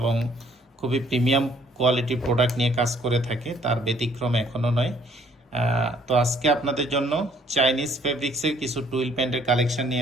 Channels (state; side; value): normal; both; correlation 0.62